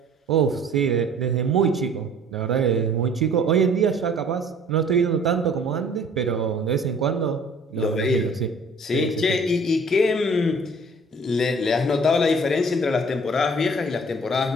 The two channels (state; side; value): normal; both; correlation 0.52